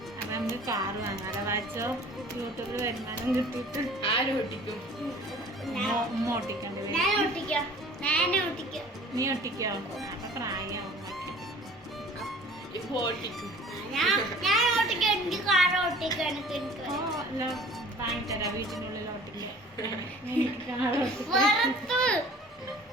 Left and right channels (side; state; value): both; normal; correlation 0.48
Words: നമുക്ക് കാറ് വാങ്ങാതെ വാച്ചോ യൂട്യൂബിൽ വരുമാനം കിട്ടിയിട്ട് ആരും ഒട്ടിക്കും. ഉമ്മ ഓട്ടിക്കേണ്ടി വരും. നീ ഒട്ടിക്കോ? അപ്പൊ പ്രായമാവും ഇപ്പൊ ഒട്ടിക്കും. ഓ അല്ല വാങ്ങിത്തരാം വീട്ടിനുള്ളിൽ ഓട്ടിക്കാൻ.